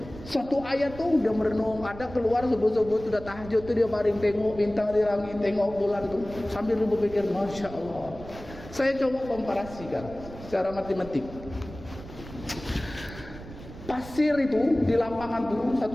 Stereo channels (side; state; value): right; noise; rumble, 15 dB below the sound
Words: satu ayat tu dia merenung, ada keluar subuh-subuh tu, dah tahajud tu dia baring tengok bintang di langit, tengok bulan tu, sambil dia berpikir, masya Allah. Saya coba komparasikan secara matematik. Pasir itu di lapangan tuh,